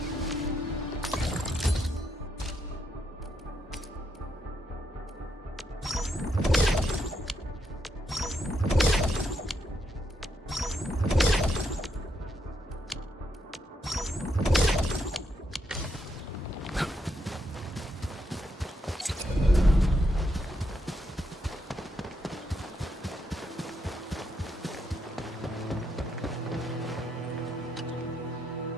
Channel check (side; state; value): both; normal; correlation 0.79